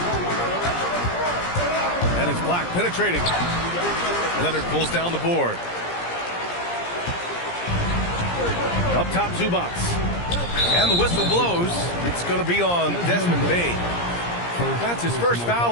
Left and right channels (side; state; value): right; late; 17 ms